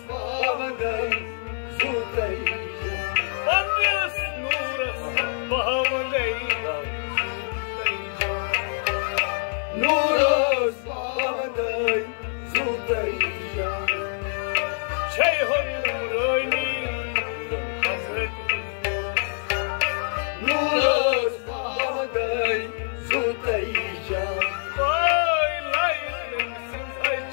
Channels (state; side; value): silent; right; digital silence